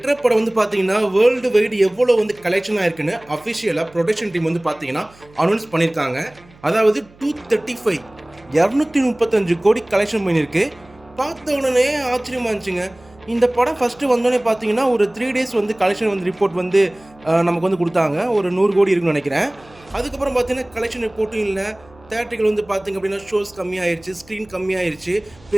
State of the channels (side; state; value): right; noise; hum, 27 dB below the sound